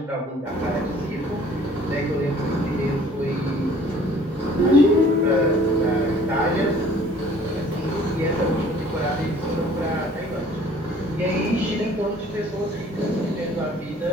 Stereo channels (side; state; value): both; normal; correlation 0.53